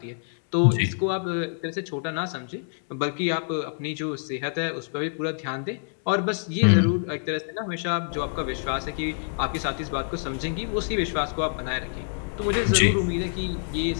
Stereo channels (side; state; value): right; silent; digital silence